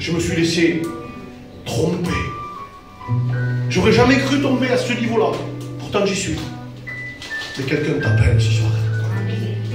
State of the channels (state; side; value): identical; both; correlation 1.00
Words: me suis laissé tromper. J'aurais jamais cru tomber à ce niveau-là. Pourtant, j'y suis. Mais quelqu'un t'appelle ce soir.